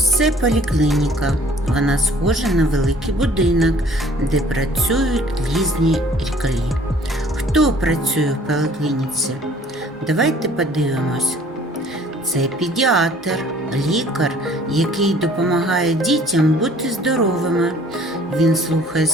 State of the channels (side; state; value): both; normal; correlation 0.54